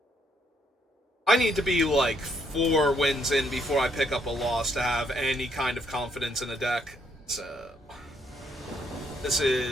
I need to be like 4 wins in before I pick up a loss to have any kind of confidence in a deck. So this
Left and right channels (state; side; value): normal; both; correlation 0.72